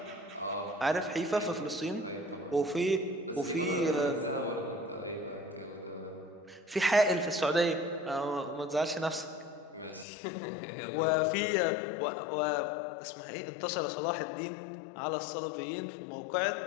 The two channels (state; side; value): drops out; right; at 10.1 s